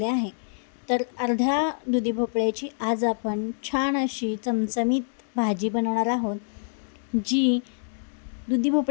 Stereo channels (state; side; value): silent; right; digital silence